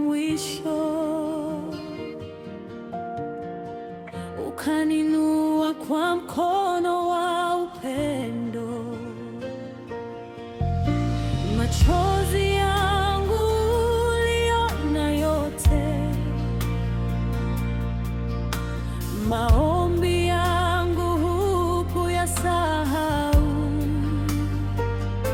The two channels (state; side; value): identical; both; correlation 1.00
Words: ukaninua kwa mkono wa upendo. Machozi yangu uliona yote, maombi yangu hukuyasahau.